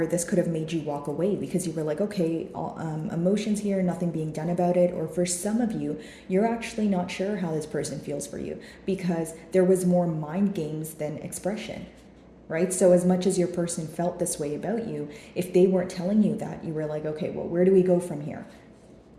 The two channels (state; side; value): identical; both; correlation 1.00